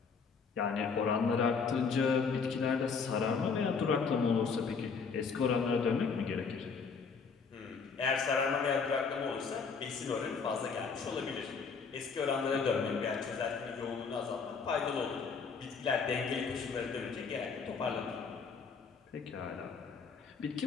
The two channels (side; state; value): right; quieter; 5.4 dB